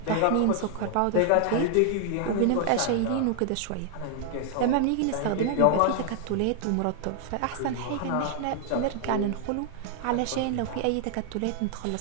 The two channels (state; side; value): different; both; correlation 0.00